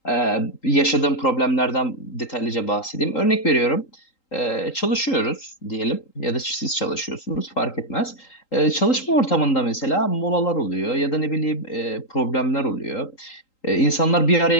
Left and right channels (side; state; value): right; late; 3.8 ms